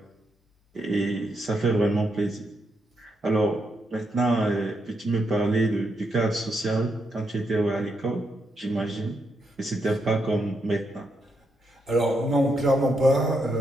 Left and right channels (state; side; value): normal; both; correlation 0.81